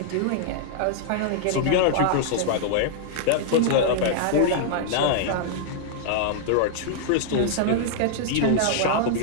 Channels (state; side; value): different; both; correlation -0.01